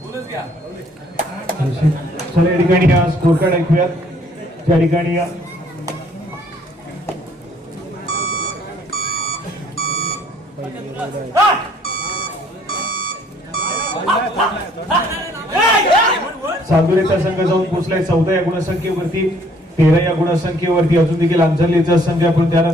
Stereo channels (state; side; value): normal; both; correlation 0.61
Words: या ठिकाणी स्कोर कार्ड ऐकूयात. त्या ठिकाणी चांदुरेचा संघ जाऊन पोहोचलाय 14 या गुणसंख्येवरती, 13 या गुणसंख्येवरती. अजून देखील अंजरलेचा संघ, पण